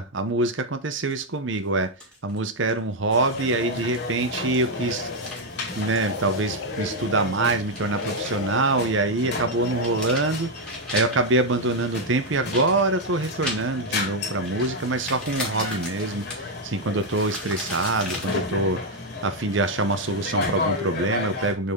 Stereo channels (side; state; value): both; normal; correlation 0.02